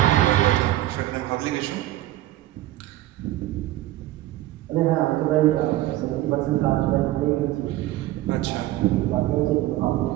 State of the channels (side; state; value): left; quieter; 15.3 dB